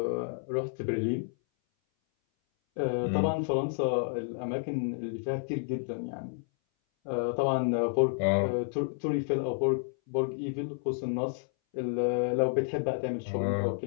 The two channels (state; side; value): silent; right; 58 dB below the other